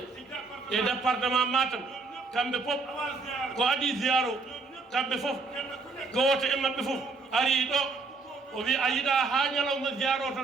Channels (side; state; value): left; quieter; 4.1 dB